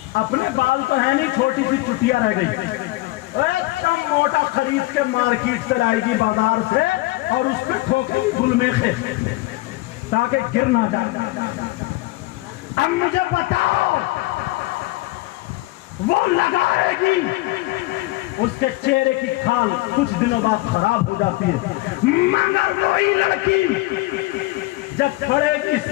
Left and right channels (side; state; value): right; quieter; 20.0 dB